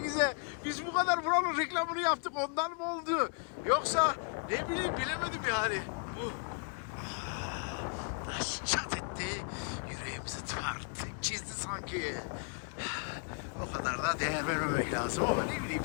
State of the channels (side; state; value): right; quieter; 38.3 dB